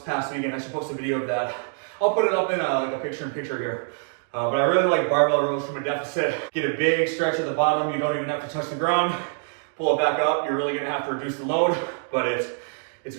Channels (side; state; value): left; silent; 57 dB below the other